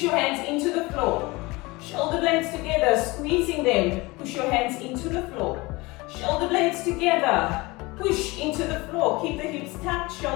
your hands into the floor. Shoulder blades together, squeezing them. Push your hands into the floor. Shoulder blades together. Push into the floor. Keep the hips tucked,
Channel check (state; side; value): quieter; right; 23.2 dB